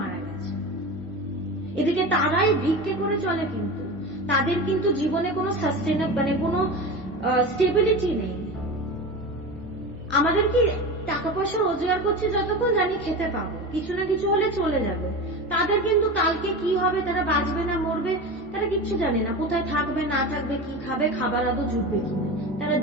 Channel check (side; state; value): right; noise; hum, 22 dB below the sound